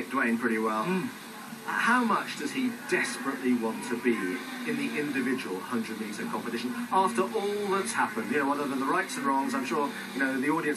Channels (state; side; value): identical; both; correlation 1.00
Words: pretty well. How much does he desperately want to be in the individual 100-metre competition after all that's happened? You know, other than the rights and wrongs, I'm sure, you know, the